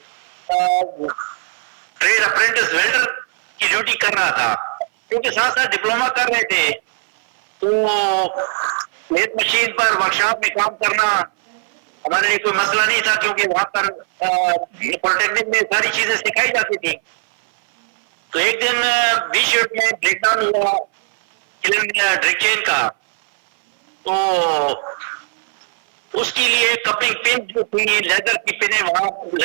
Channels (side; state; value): left; silent; 61 dB below the other